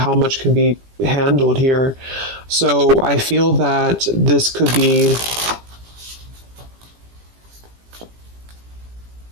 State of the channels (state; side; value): late; left; 17 ms